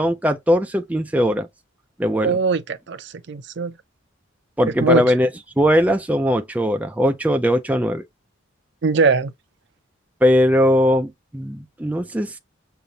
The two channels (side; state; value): both; normal; correlation 0.64